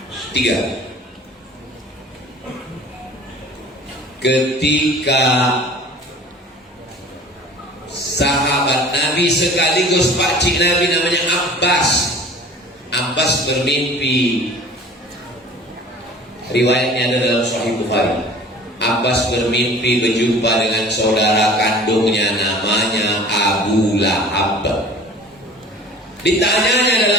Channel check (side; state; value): both; normal; correlation 0.45